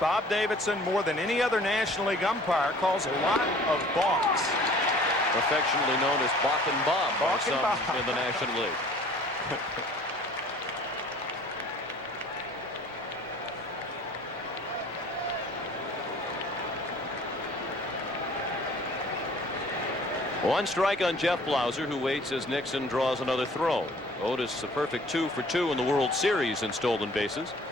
Davidson, more than any other National League umpire, calls a lot of balks. Affectionately known as Bach and Bob by Bach and some Bob. in the National League. One strike on Jeff Blauser, who waits as Nixon draws another throw. Otis a perfect 2 for 2 in the World Series in stolen bases.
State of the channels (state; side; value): normal; both; correlation 0.51